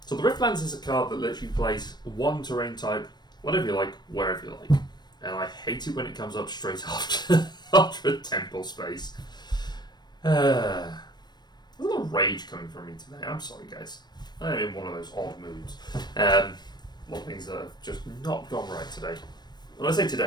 So the Riftlands is a card that lets you place one terrain type, whatever you like, wherever you like. And I hate it when it comes up straight after a temple space. There's a lot of rage coming from me today. I'm sorry, guys. I'm in one of those odd moods. A lot of things that have just not gone right today. When I say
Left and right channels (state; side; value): late; right; 0.21 ms